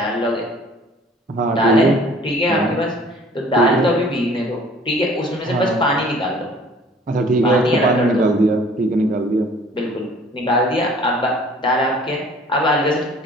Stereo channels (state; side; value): normal; both; correlation 0.52